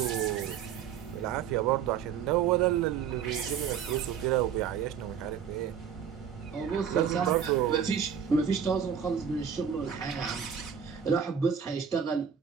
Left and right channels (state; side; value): quieter; left; 7.8 dB